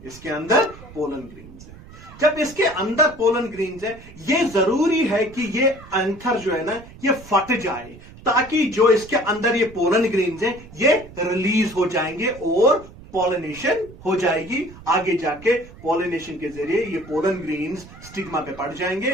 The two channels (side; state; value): right; noise; rumble, 19 dB below the sound